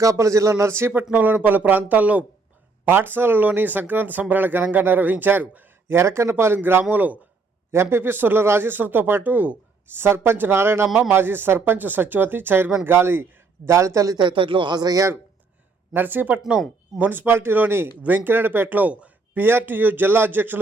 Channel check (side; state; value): left; quieter; 4.1 dB